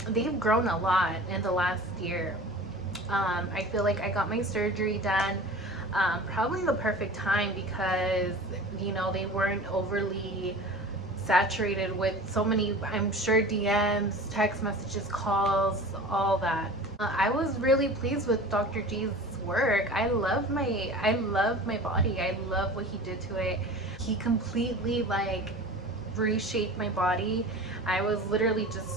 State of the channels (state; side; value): normal; both; correlation 0.37